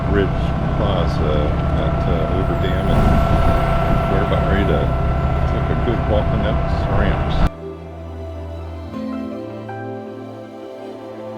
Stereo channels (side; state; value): both; identical; correlation 1.00